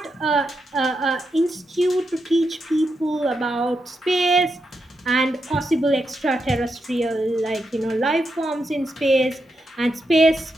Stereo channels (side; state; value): both; normal; correlation 0.84